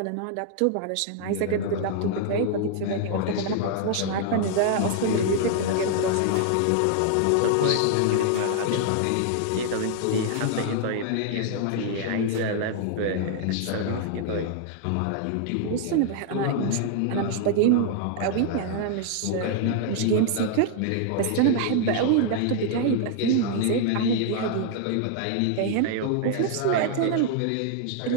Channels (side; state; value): both; different; correlation 0.00